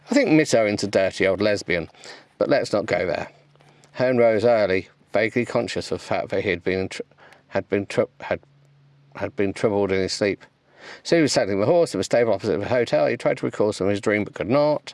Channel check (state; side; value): identical; both; correlation 1.00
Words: think Miss Owen's a dirty old lesbian, but let's not go there. Herne rose early, vaguely conscious of the fact that he had been troubled in his sleep. So he was saddling the horse at the stable opposite the hotel. He tried to recall some of his dream, but could